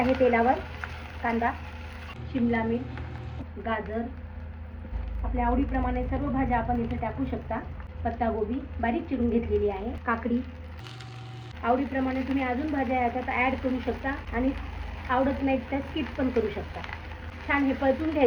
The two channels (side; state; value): both; identical; correlation 1.00